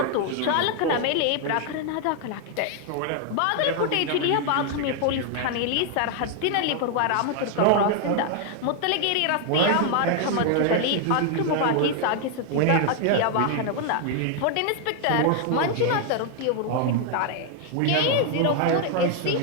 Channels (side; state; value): both; different; correlation 0.00